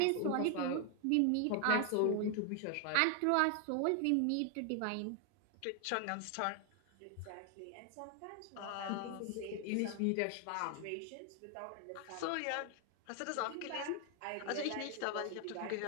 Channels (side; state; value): both; different; correlation 0.00